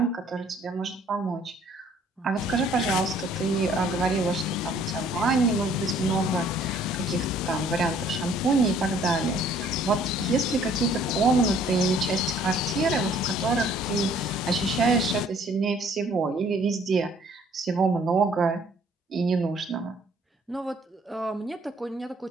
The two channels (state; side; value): normal; both; correlation 0.59